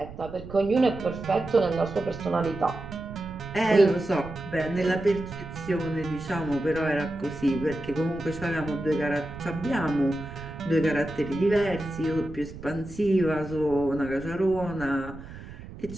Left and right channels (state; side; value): noise; right; rumble, 14 dB below the sound